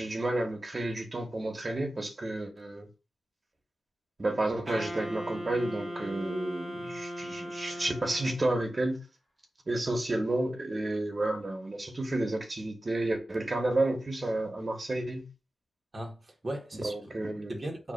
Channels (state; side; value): normal; both; correlation 0.95